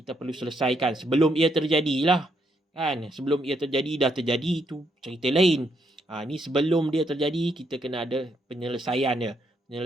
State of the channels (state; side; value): normal; both; correlation 0.75